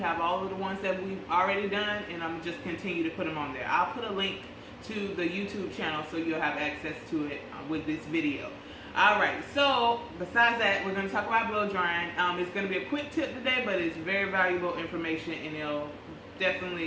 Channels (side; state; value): both; identical; correlation 1.00